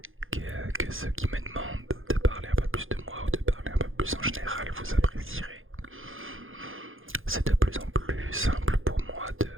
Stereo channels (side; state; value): left; late; 0.59 ms